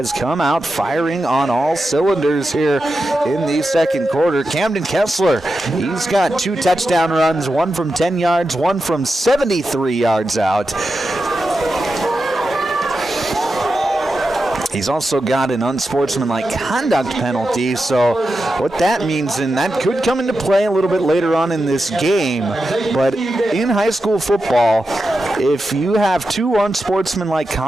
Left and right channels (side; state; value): both; normal; correlation 0.90